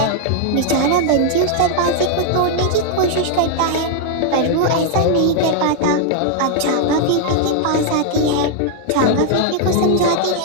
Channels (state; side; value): different; both; correlation 0.00